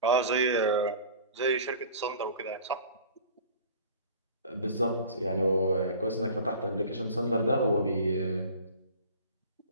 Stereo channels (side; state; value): both; inverted; correlation -0.43